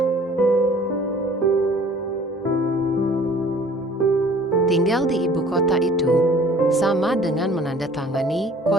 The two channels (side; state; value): both; normal; correlation 0.51